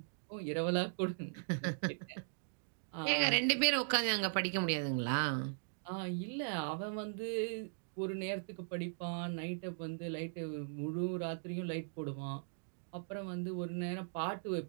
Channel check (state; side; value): silent; left; digital silence